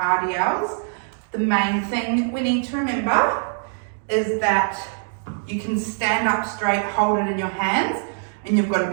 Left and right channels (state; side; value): silent; left; digital silence